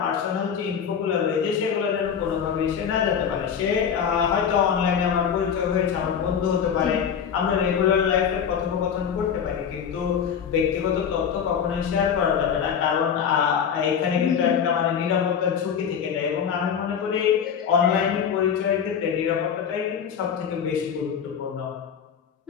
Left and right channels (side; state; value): right; quieter; 7.6 dB